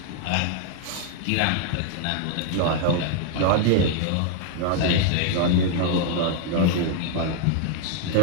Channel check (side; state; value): both; different; correlation 0.00